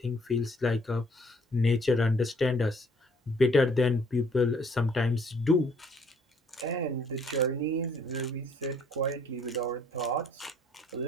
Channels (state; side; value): normal; both; correlation 0.61